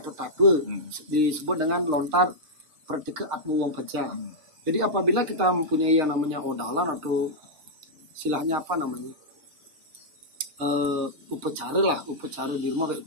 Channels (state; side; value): late; left; 6.5 ms